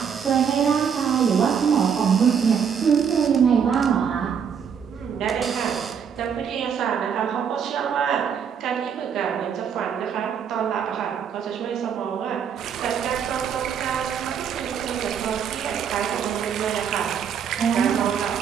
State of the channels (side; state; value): left; quieter; 7.4 dB